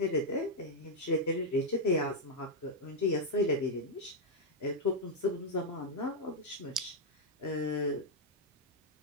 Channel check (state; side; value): normal; both; correlation -0.01